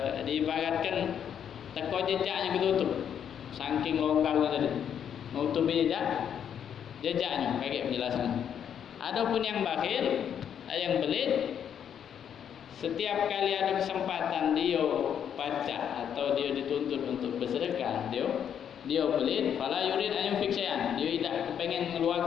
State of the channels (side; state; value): right; quieter; 8.7 dB